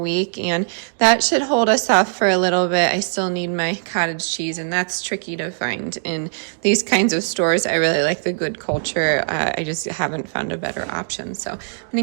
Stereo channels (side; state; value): left; silent; digital silence